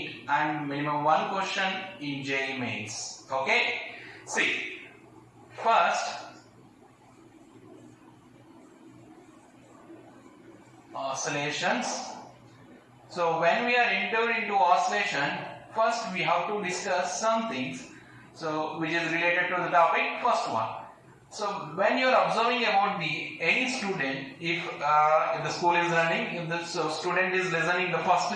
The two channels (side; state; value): both; identical; correlation 1.00